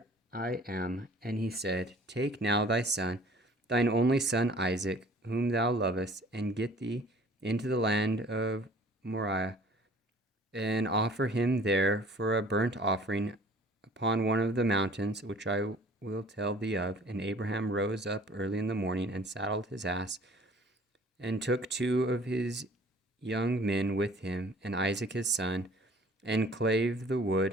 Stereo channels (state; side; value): normal; both; correlation 0.52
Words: I am. And he said, Take now thy son, thine only son Isaac, whom thou lovest, and get thee into the land of Moriah, and offer him there for a burnt offering upon one of the mountains which I will tell thee of. And Abraham rose up early in the morning, and saddled his ass, and took 2 of his young men with him, and Isaac his son, and clave the